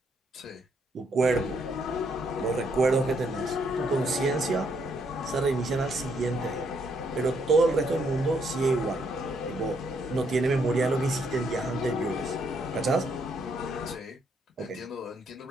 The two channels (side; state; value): both; normal; correlation 0.73